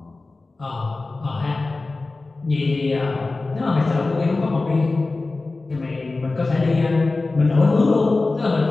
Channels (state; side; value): quieter; right; 3.4 dB